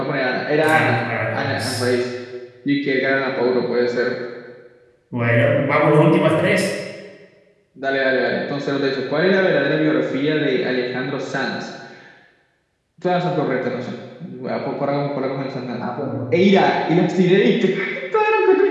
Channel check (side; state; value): both; identical; correlation 1.00